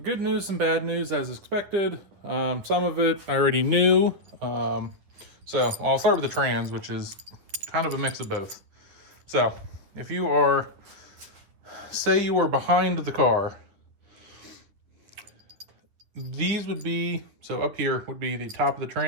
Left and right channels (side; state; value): left; late; 10 ms